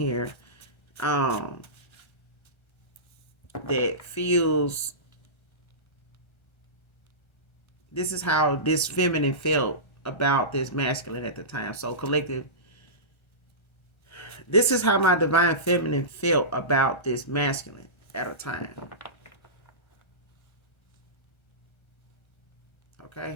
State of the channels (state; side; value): late; right; 1.3 ms